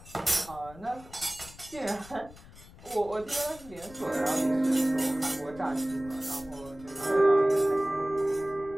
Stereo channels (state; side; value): noise; left; rumble, 20 dB below the sound